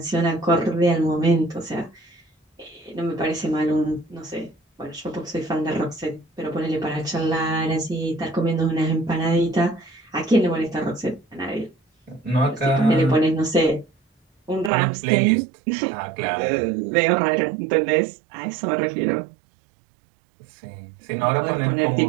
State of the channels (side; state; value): left; drops out; at 14.7 s